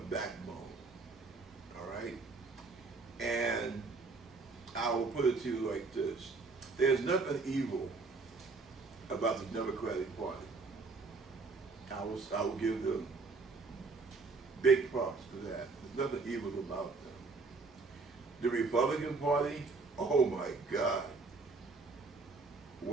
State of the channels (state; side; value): quieter; left; 4.0 dB